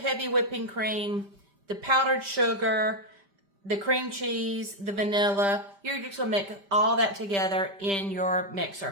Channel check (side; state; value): left; late; 5.1 ms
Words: whipping cream, the powdered sugar, the cream cheese, the vanilla. You're just going to mix all that together in your